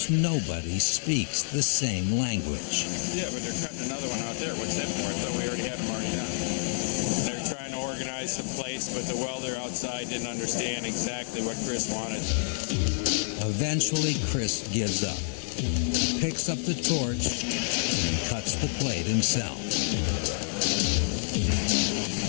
nobody speaks the same language. Yeah, but they're cutting another one out there. What's that for? I thought we already had them already done. They're trying to organize some plates, but the welder outside didn't understand exactly what Chris wanted. Eventually, Chris gives up, picks up the torch, and cuts the plate himself.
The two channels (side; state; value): right; silent; digital silence